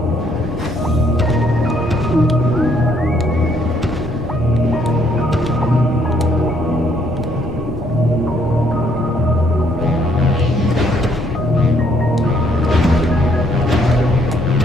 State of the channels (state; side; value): normal; both; correlation 0.68